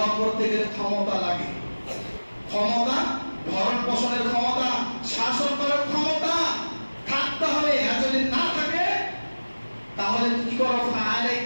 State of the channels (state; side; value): inverted; both; correlation -1.00